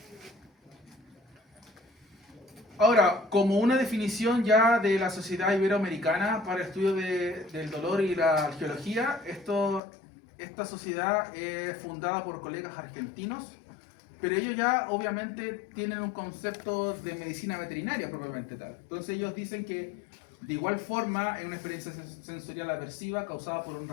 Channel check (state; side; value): drops out; right; at 9.8 s